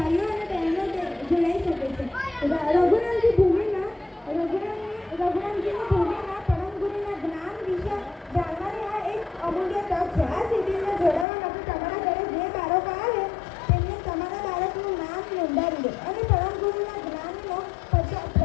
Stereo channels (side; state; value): right; drops out; at 11.2 s